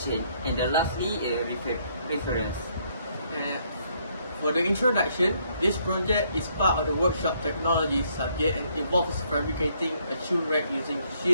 and the lastly reference. For the introduction, this project is part of the workshop technology subject and involves fabricating a shoe rack using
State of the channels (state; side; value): inverted; both; correlation -0.69